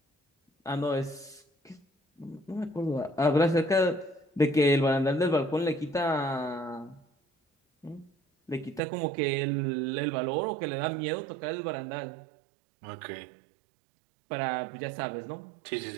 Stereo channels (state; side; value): drops out; left; at 8.8 s